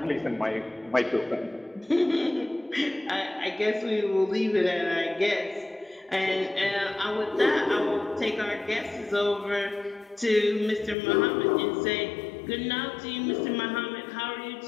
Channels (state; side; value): drops out; right; at 11.0 s